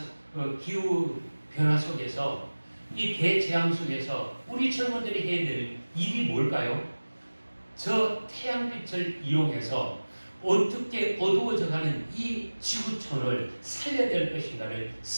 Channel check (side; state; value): both; inverted; correlation -1.00